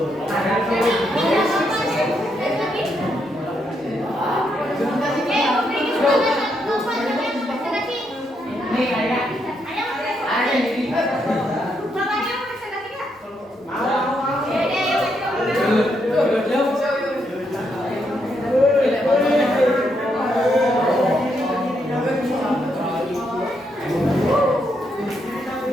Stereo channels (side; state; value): both; normal; correlation 0.78